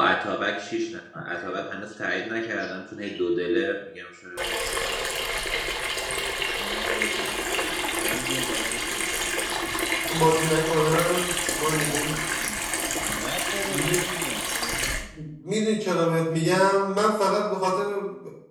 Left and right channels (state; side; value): identical; both; correlation 1.00